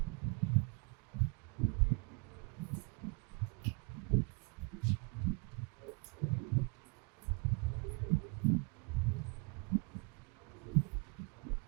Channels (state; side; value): quieter; left; 32.7 dB